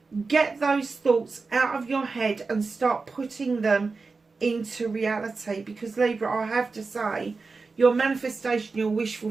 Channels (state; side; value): quieter; left; 4.2 dB